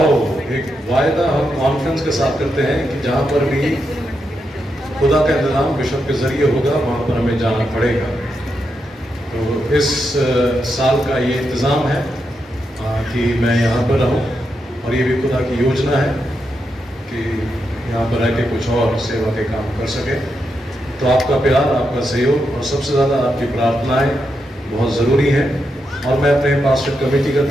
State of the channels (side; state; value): both; normal; correlation 0.84